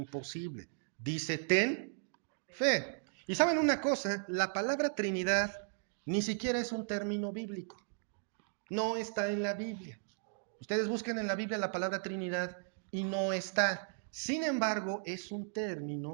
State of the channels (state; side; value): silent; left; digital silence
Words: Dice, ten fe. Y saben una cosa, la palabra Trinidad ni siquiera es un término bíblico. No está en la Biblia. Ustedes busquen en la Biblia la palabra Trinidad y no está. Sin embargo, es un